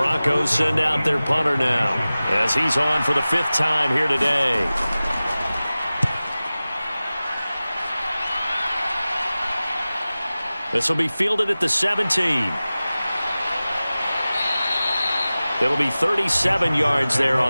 send out their punter now as he's on for the 5th time here today. This will be fielded at the 17. It'll be 37 yards there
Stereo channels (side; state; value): both; inverted; correlation -0.97